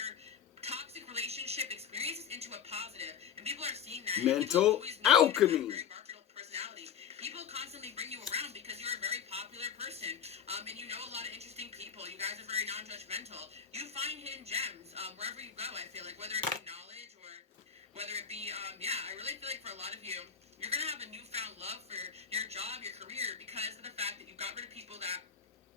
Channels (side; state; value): right; quieter; 7.8 dB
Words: toxic relationship experiences into a positive, and people are seeing that. Mental alchemy. Very marketable personality. People constantly bring you around because you're a very popular person, and you know a lot of interesting people. You guys are very non-judgmental. You find hidden gems wherever you go. I feel like whether it be knowledge or whether it be, I really feel like for a lot of you, you're gonna have a newfound love for your job, your career, because of the fact that you got rid of people that